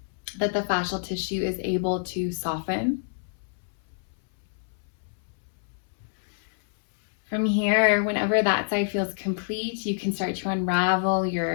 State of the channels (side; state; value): right; silent; 60 dB below the other